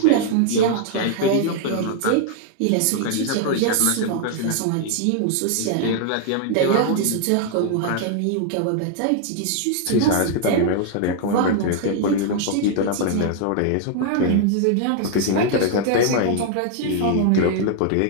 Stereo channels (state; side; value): different; both; correlation 0.00